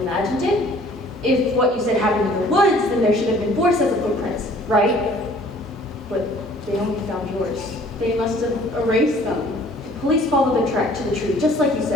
it? If what you said happened in the woods, then there should have been 4 sets of footprints, right? But they only found yours. They must have erased them. The police followed the track to the tree, just like you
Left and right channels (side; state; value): both; normal; correlation 0.54